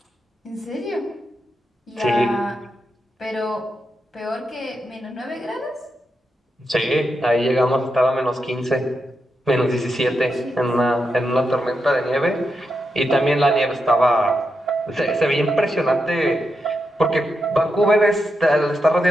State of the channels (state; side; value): normal; both; correlation 0.86